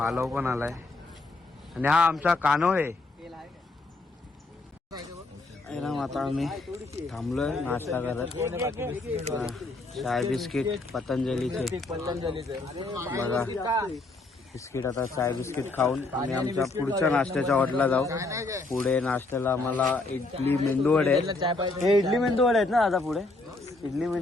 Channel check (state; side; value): quieter; right; 3.2 dB